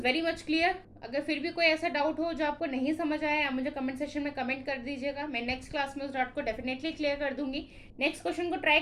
very much clear. अगर फिर भी कोई ऐसा डाउट हो जो आपको नहीं समझ आया, आप मुझे कमेंट सेक्शन में कमेंट कर दीजिएगा। मैं नेक्स्ट क्लास में उस डाउट को डेफिनेटली क्लियर कर दूंगी। नेक्स्ट क्वेश्चन को ट्राई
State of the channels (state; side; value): identical; both; correlation 1.00